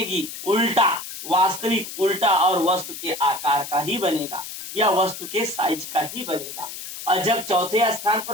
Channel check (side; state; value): left; noise; hiss, 10 dB below the sound